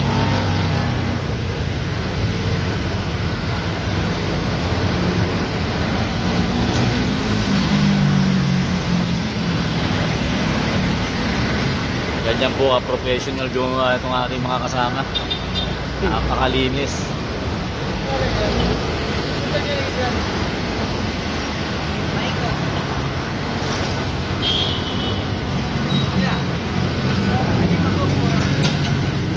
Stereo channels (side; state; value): both; identical; correlation 1.00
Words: Ganyan po professional yung itong ating mga kasama. Napakalinis.